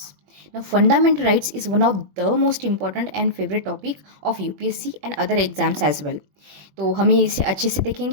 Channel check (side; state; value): left; late; 21 ms